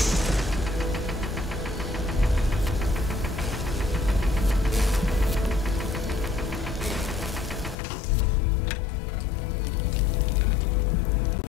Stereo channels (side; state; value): right; drops out; at 7.8 s